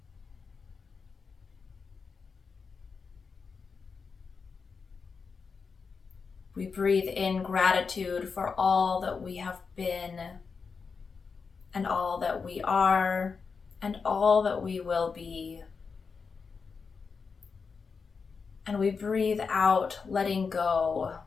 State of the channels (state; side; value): quieter; right; 5.2 dB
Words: We breathe in gratitude for all that we have been, and all that we are, and all that we will be. And we breathe out, letting go.